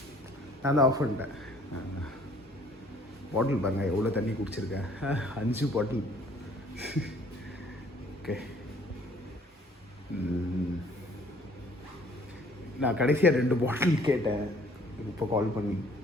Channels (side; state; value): both; normal; correlation 0.57